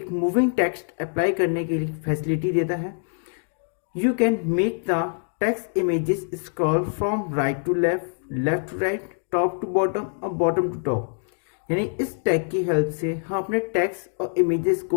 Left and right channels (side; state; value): right; silent; 62 dB below the other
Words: मूविंग टेक्स्ट अप्लाई करने की फैसिलिटी देता है। You can make the text images scroll from right to left left to right, top to bottom और बॉटम टू टॉप। यानी इस टैग की हेल्प से हम अपने टेक्स्ट और इमेजेस